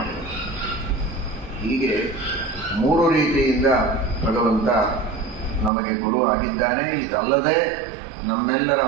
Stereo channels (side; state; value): left; drops out; at 5.7 s